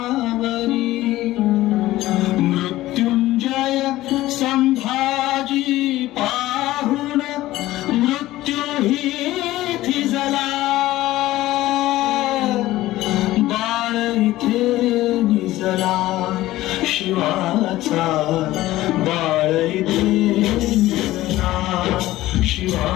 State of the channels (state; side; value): quieter; right; 16.2 dB